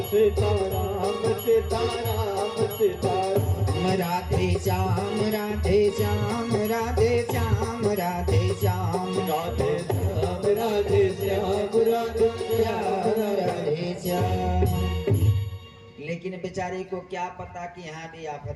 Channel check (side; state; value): both; identical; correlation 1.00